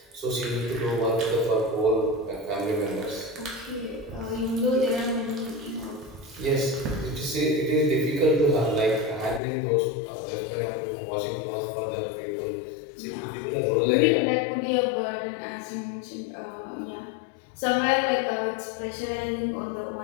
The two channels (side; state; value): right; drops out; at 9.4 s